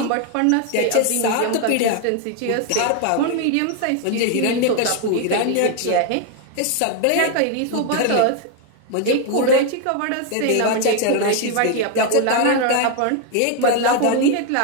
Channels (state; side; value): different; both; correlation 0.01